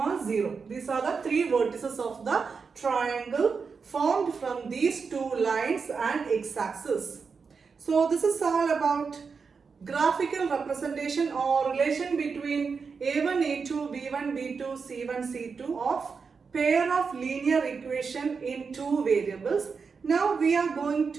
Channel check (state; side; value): quieter; left; 5.3 dB